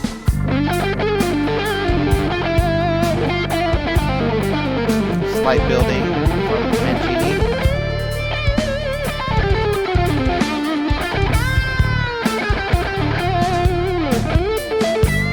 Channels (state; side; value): identical; both; correlation 1.00